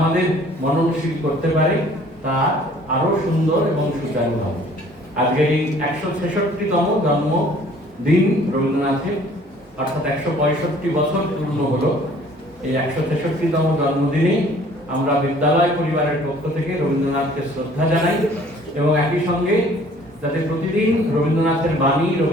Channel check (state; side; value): normal; both; correlation 0.55